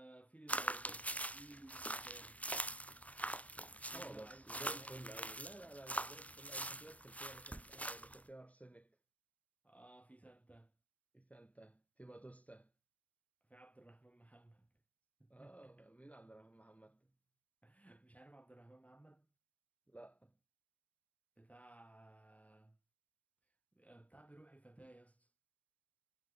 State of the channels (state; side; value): late; right; 0.069 ms